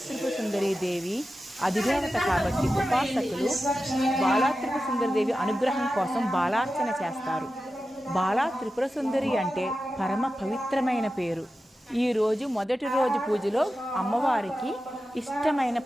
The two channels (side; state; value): both; normal; correlation 0.92